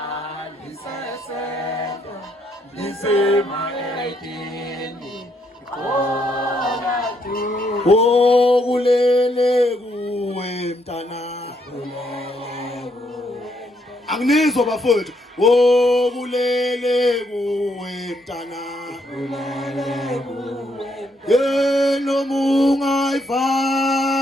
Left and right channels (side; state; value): both; normal; correlation 0.74